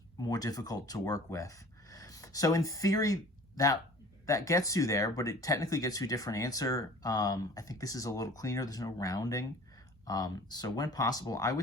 more difficult to work with. So in theory, that gets you there, but it technically gets you a different answer. I think this is a little cleaner. There's no rounding. So when possible, I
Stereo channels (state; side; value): normal; both; correlation 0.46